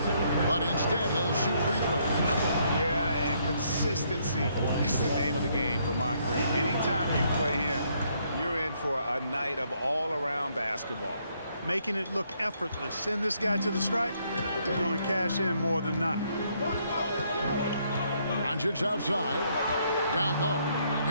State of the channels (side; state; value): both; inverted; correlation -0.71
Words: But instead, he'll shoot free throws. Yeah, and consistency is the name of the game for Moncrief. Anytime you play him, you're in for a night of all-around basketball. Making it look effortless. Send this guy to the stripe. He's going to cash in more than not. Doncic outside. Down low.